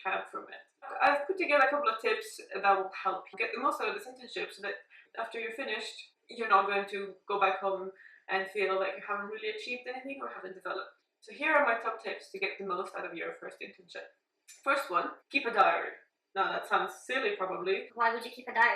can from it. I've put together a couple of tips that will help you get the most out of this internship so that after you're finished, you're not going to go back home and feel like you haven't really achieved anything or haven't developed. So here are my top tips to get the most out of your first internship. First one, keep a diary. Now that sounds silly probably. Why would you keep a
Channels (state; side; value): identical; both; correlation 1.00